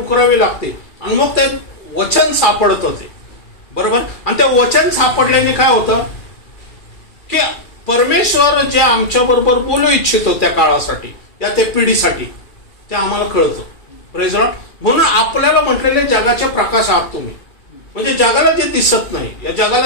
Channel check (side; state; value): right; late; 2.3 ms